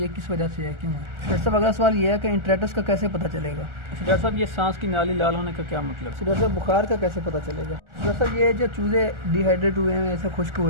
किस वजह से है, क्यों है? डॉक्टर साहब अगला सवाल ये है कि इंट्राइटिस का कैसे पता चलेगा? डॉक्टर साहब ये सांस की नाली लाल होने का क्या मतलब? डॉक्टर साहब बुखार का कैसे पता चलेगा? डॉक्टर साहब ये जो चूजे डिहाइड्रेट हुए हैं, ऐसे खुश्क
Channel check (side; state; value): left; late; 1.4 ms